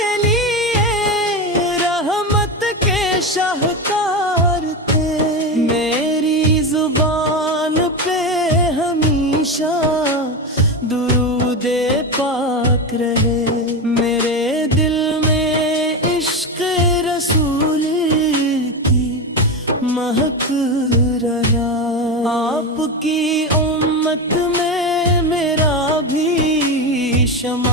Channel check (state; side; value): normal; both; correlation 0.17